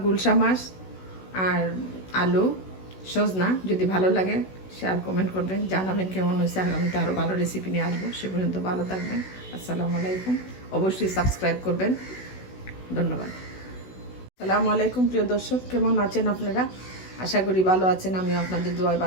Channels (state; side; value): late; right; 16 ms